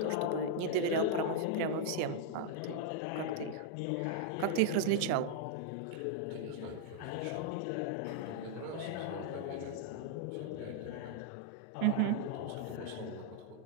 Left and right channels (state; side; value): different; both; correlation -0.01